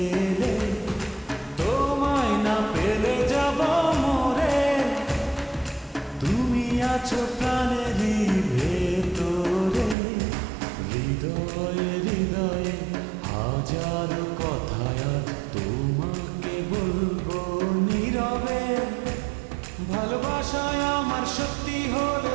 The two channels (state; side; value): drops out; left; at 10.0 s